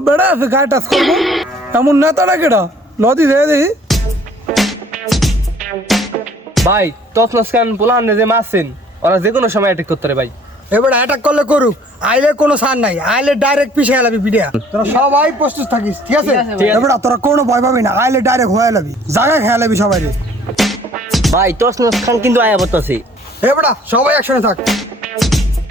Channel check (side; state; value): both; normal; correlation 0.56